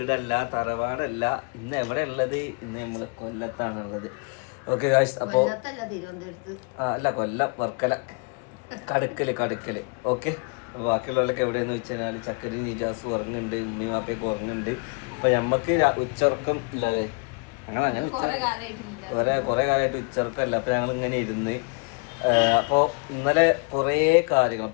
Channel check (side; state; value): right; quieter; 33.9 dB